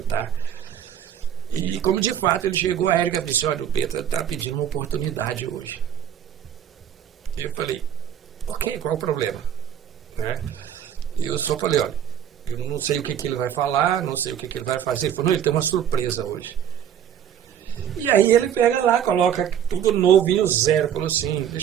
E como de fato ele chegou, a Érica disse, olha, o Peta está pedindo uma oportunidade hoje. Eu falei, ok, qual o problema? Né? Eu só falei, olha, eu não sei o que ele vai falar, não sei o que ele vai fazer. Ele falou, não, ele tem uma surpresa hoje. E aí ele pega lá, coloca tudo novinho, zero. Falou assim,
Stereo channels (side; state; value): left; quieter; 9.5 dB